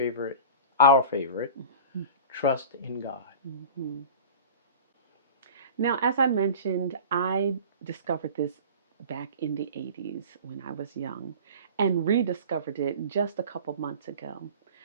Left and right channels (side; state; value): both; inverted; correlation -0.38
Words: our favorite, trust in God. Mhm. Now, as I mentioned, I discovered this back in the 80s when I was young and rediscovered it just a couple months ago.